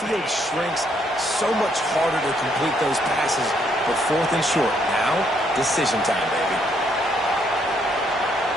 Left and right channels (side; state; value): both; normal; correlation 0.71